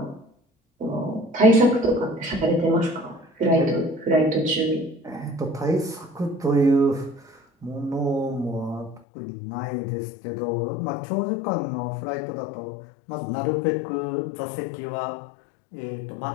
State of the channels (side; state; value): right; drops out; at 9.0 s